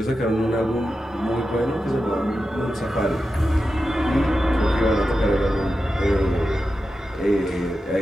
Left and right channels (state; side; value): normal; both; correlation 0.91